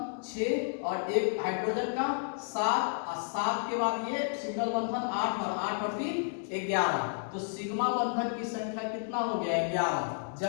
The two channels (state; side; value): silent; right; 57 dB below the other